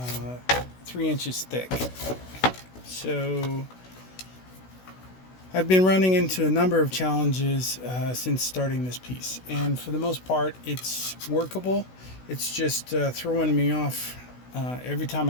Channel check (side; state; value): right; late; 16 ms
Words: 3 inches thick. So I've been running into a number of challenges since starting this piece, and for the most part, it's workable. It's just throwing me off every time